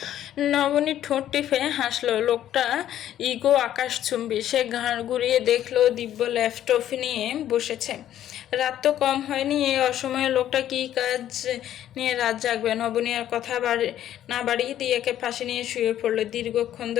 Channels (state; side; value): quieter; right; 11.7 dB